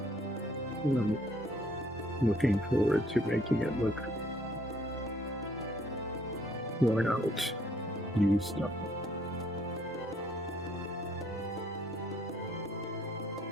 And I'm looking forward to making it look worn out, used up.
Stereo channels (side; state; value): both; normal; correlation 0.64